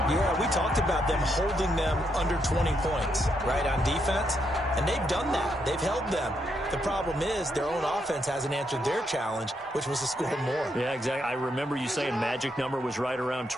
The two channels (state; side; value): normal; both; correlation 0.78